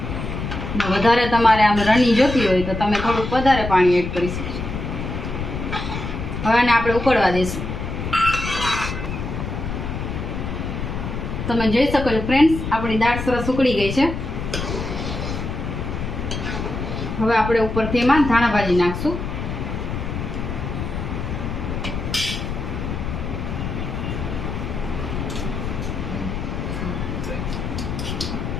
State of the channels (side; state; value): left; noise; rumble, 4 dB below the sound